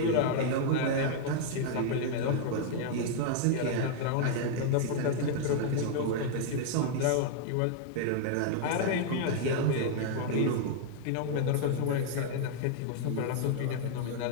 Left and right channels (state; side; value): different; both; correlation -0.01